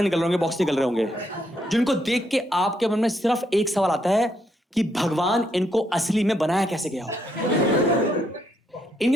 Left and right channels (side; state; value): both; normal; correlation 0.76